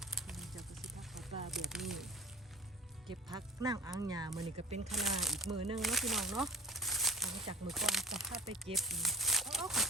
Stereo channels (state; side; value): normal; both; correlation 0.42